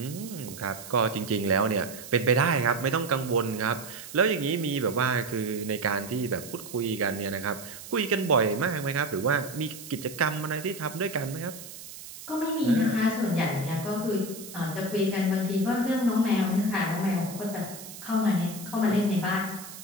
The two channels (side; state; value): right; noise; hiss, 14 dB below the sound